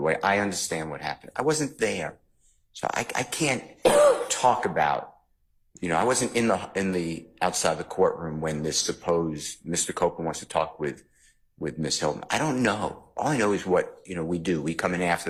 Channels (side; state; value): both; identical; correlation 1.00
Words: way I understand what happened. I wasn't there. So I can't talk about, you know, I wasn't in the outside the courtroom when this supposed Mr. Copeland wants to talk with Ms. Hilton. I don't know. All I know is what, you know, we do. We come in after